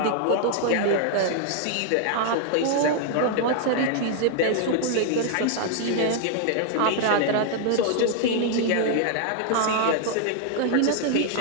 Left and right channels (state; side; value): different; both; correlation 0.00